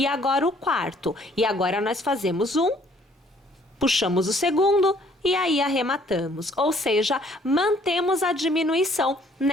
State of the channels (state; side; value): normal; both; correlation 0.61